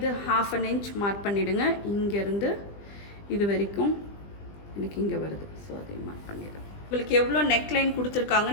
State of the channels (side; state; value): right; late; 20 ms